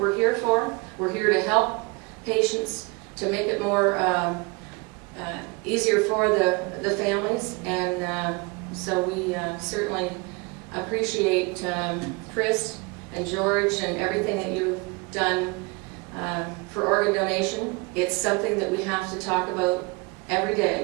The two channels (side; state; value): left; quieter; 28.5 dB